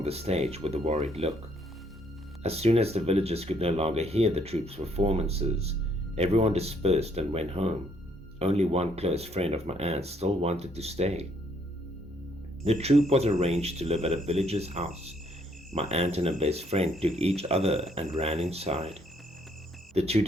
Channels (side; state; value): both; normal; correlation 0.68